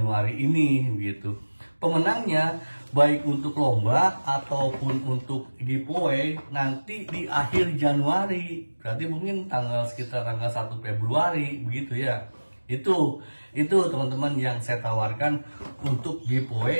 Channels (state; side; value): inverted; both; correlation -1.00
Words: ini gitu. Pemenangnya baik untuk lomba ataupun untuk giveaway nanti di akhir Januari, berarti mungkin sekitar tanggal 1 Februari begitu ya. Itu teman-teman yang saya tawarkan untuk